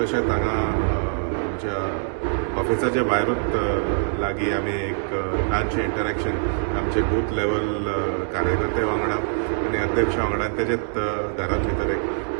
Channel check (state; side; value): silent; left; digital silence